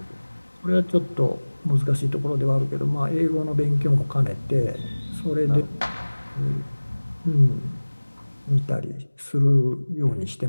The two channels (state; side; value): inverted; both; correlation -1.00